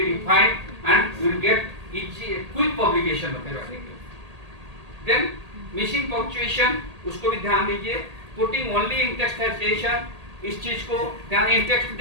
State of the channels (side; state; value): left; late; 1.8 ms